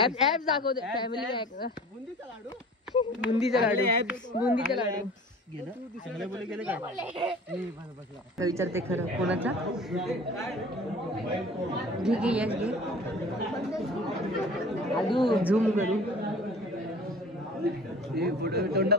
ऍप दाखवते. Family pack. बुंदीचा लाडू. बुंदीचा लाडू विचारते खरं कोणाचा? घे घे यश घे. आलू झूम करू.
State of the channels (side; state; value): both; normal; correlation 0.44